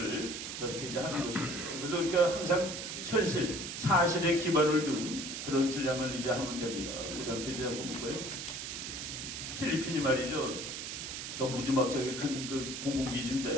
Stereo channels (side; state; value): right; noise; hiss, 6 dB below the sound